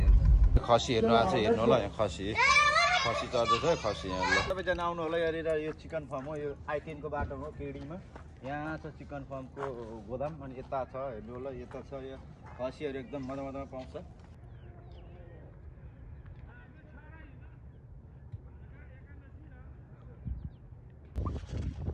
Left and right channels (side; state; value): both; identical; correlation 1.00